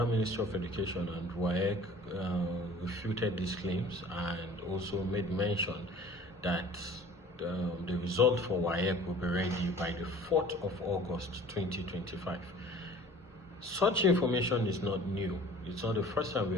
Ministry of Education and WAEC refuted these claims and also made mention that the result for WAEC will be ready by the 4th of August 2025. Such information is not new. It's not the first time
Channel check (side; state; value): both; normal; correlation 0.46